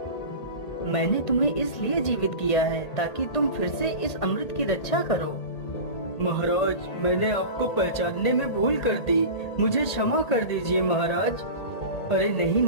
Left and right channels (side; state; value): right; late; 1.8 ms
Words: मैंने तुम्हें इसलिए जीवित किया है ताकि तुम फिर से इस अमृत की रक्षा करो। महाराज, मैंने आपको पहचानने में भूल कर दी, मुझे क्षमा कर दीजिए महाराज। अरे नहीं